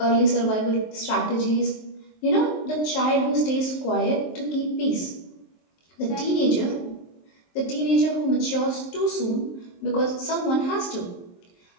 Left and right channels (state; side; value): late; right; 23 ms